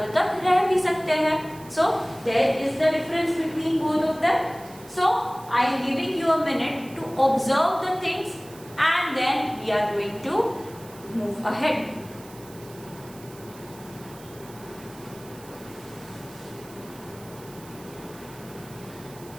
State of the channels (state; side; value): noise; right; hiss, 21 dB below the sound